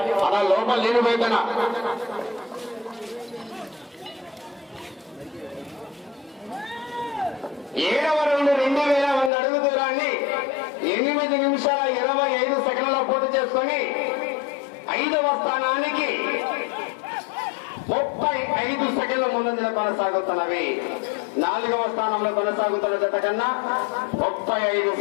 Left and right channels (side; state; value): right; drops out; at 9.3 s